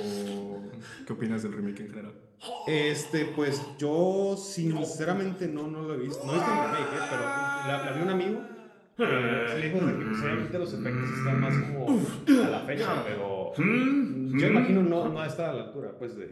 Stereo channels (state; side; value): identical; both; correlation 1.00